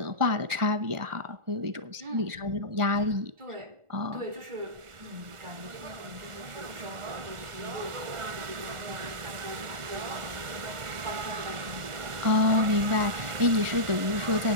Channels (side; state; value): left; late; 1.4 ms